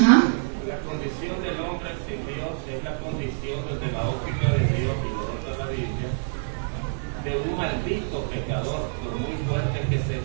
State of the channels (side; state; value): left; silent; digital silence